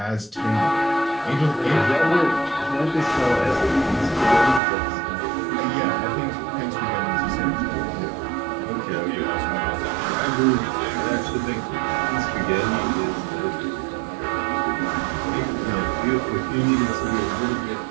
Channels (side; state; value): left; drops out; at 4.6 s